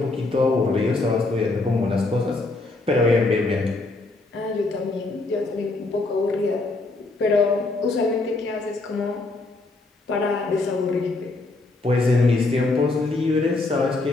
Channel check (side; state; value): right; quieter; 3.3 dB